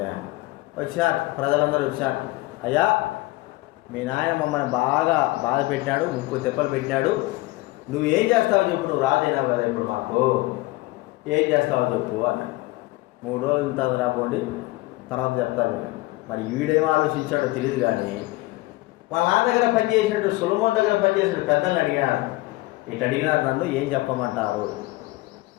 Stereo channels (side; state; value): right; quieter; 20.2 dB